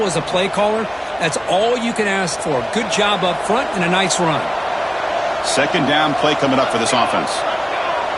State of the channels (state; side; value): identical; both; correlation 1.00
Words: as a play caller. That's all you can ask for. Good job up front and a nice run. Second down play coming up for this offense.